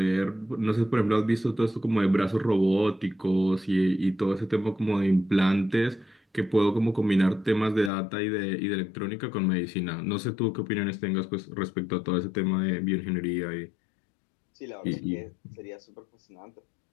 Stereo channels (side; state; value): right; drops out; at 7.9 s